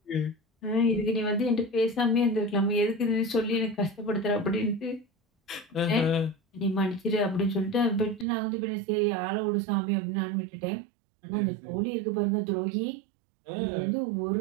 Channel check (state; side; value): drops out; left; at 8.2 s